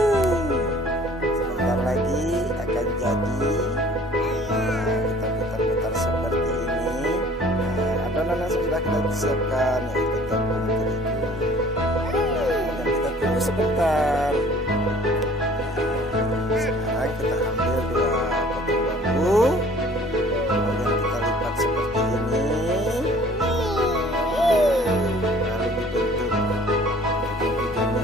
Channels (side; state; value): both; normal; correlation 0.52